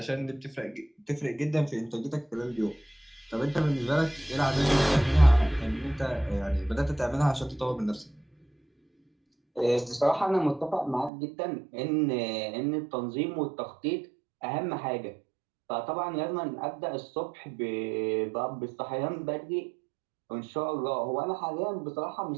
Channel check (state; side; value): drops out; left; at 11.1 s